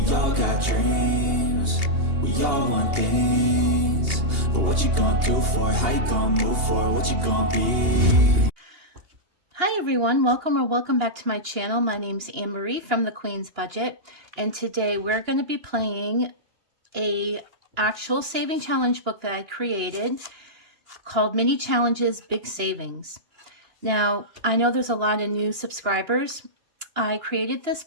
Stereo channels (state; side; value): late; left; 2.8 ms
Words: all got dreams, we all want things. But what you gonna do for it? How you gonna move for it? What you gonna be? Hi everyone, welcome back to my channel. My name's Anne-Marie from The Queen's Budget, and today we're going to be playing a actual saving challenge book that I created called Mini Challenges Big Savings. Now, I know there's a lot of new subscribers. I created this